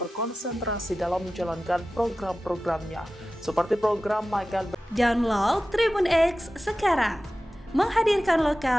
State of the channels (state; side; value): normal; both; correlation 0.95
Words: dalam menjalankan program-programnya, seperti program makan. Download Tribun X sekarang, menghadirkan